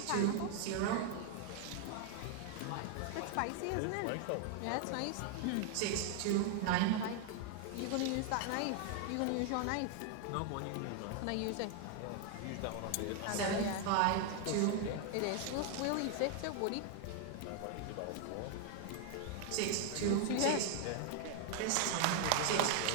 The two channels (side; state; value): both; different; correlation 0.00